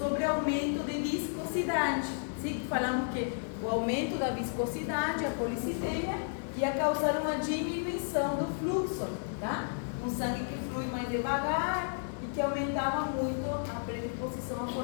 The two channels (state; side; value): silent; right; 56 dB below the other